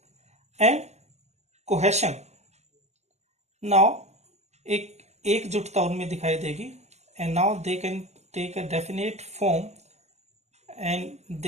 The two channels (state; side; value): late; left; 0.33 ms